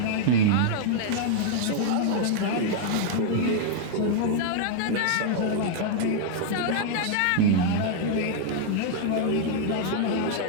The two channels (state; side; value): different; both; correlation 0.00